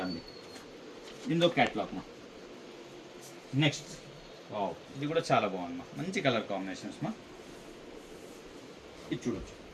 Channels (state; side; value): identical; both; correlation 1.00